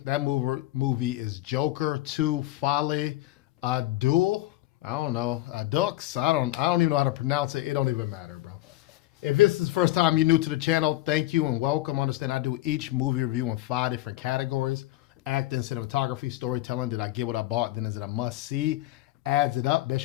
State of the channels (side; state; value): right; quieter; 16.2 dB